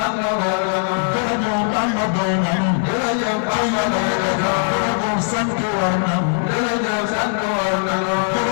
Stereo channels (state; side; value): silent; right; digital silence